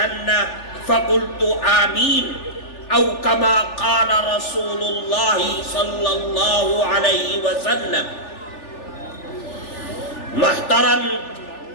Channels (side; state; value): right; late; 3.4 ms